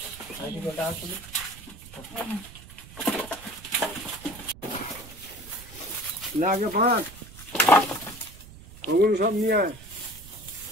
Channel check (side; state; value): right; noise; rumble, 18 dB below the sound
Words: না আগে ভাত ওগুলো সব নিয়ে আয়।